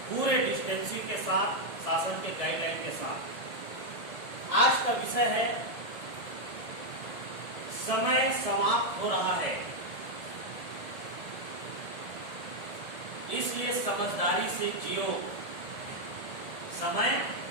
पूरे डिस्टेंसिंग के साथ, शासन के गाइडलाइन के साथ। आज का विषय है समय समाप्त हो रहा है, इसलिए समझदारी से जियो। समय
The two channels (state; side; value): late; right; 1.7 ms